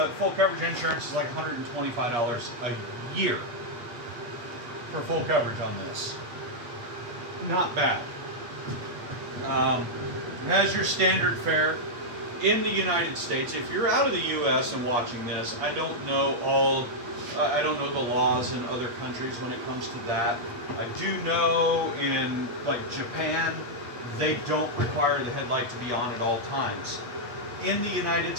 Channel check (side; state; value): left; late; 8.4 ms